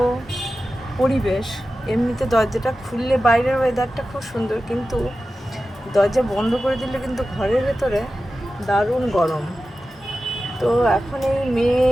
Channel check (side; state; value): both; normal; correlation 0.93